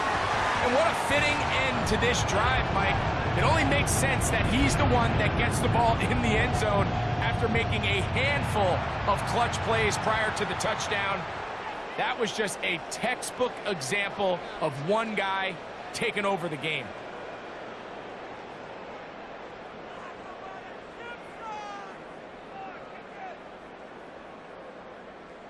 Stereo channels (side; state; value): both; identical; correlation 1.00